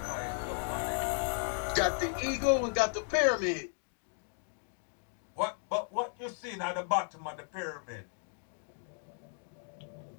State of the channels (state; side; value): silent; right; 54 dB below the other